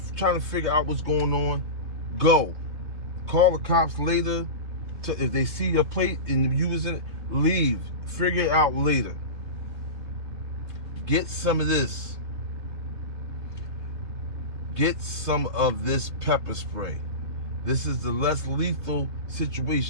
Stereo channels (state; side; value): late; left; 3.3 ms